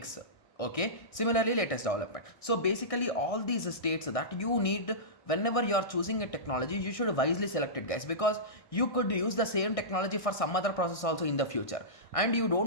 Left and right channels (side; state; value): right; late; 1.6 ms